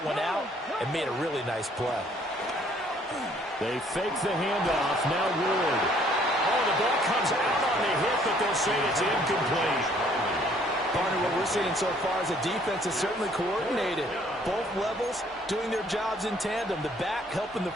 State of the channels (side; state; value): both; normal; correlation 0.62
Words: one out and made a really nice play. They fake the handoff. Now Ward. Oh, the ball comes out on the hit, but they'll say it's incomplete. Partner, what we're seeing so far is the defense is certainly coordinated. Both levels doing their jobs in tandem. The back helping the